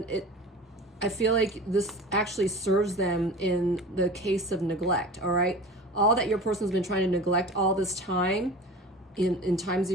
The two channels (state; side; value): normal; both; correlation 0.36